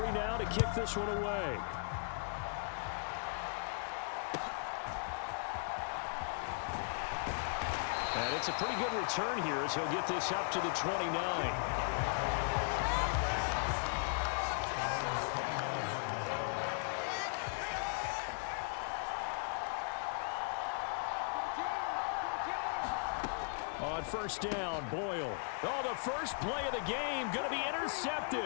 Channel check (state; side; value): silent; right; digital silence